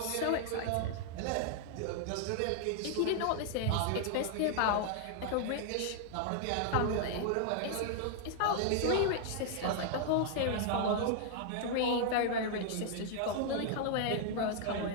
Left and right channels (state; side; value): different; both; correlation 0.00